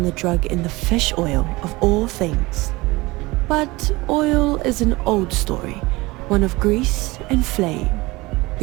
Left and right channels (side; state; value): left; quieter; 21.7 dB